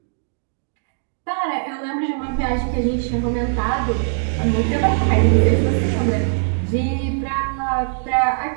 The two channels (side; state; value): left; silent; digital silence